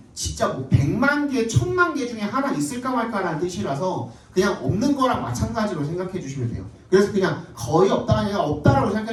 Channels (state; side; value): identical; both; correlation 1.00